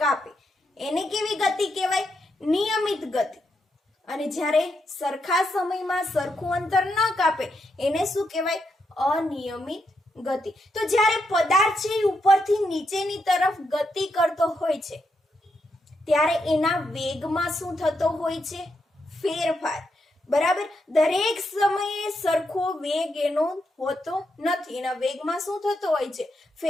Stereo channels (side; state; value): both; normal; correlation 0.82